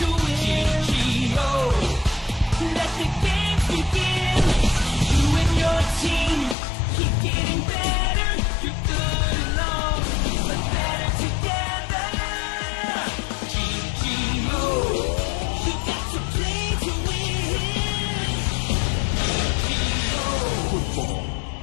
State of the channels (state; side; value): drops out; right; at 6.6 s